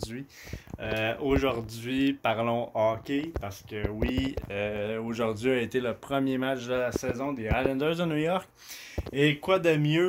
Aujourd'hui, parlons hockey parce que oui, aujourd'hui a été le premier match de la saison des Islanders de New York. Et quoi de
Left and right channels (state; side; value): identical; both; correlation 1.00